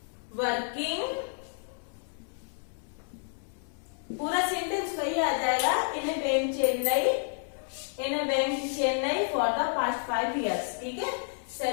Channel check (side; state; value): right; silent; 58 dB below the other